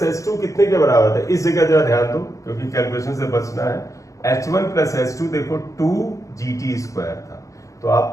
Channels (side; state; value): right; late; 0.15 ms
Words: h2 कितने के बराबर था, इस जगह जरा ध्यान दो क्योंकि कैलकुलेशन से बचना है, h1 प्लस h2 देखो 2 gt स्क्वायर था, तो